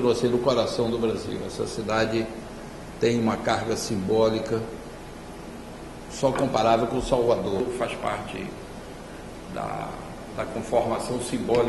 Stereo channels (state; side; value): identical; both; correlation 1.00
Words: sendo o coração do Brasil. Essa cidade tem uma carga simbólica só comparável com Salvador. Faz parte da conformação